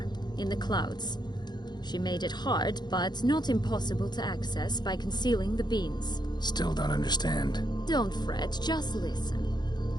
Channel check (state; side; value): late; right; 0.21 ms